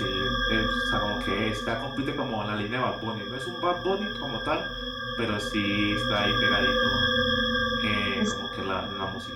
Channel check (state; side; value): identical; both; correlation 1.00